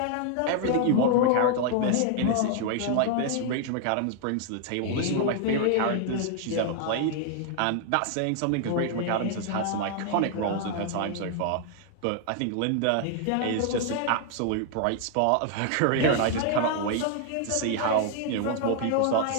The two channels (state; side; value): different; both; correlation 0.00